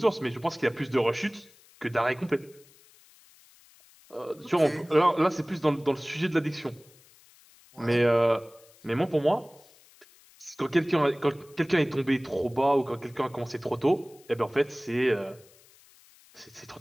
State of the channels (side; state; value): left; noise; hiss, 27 dB below the sound